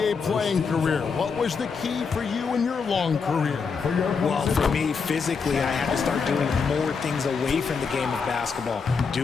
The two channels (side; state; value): right; quieter; 5.4 dB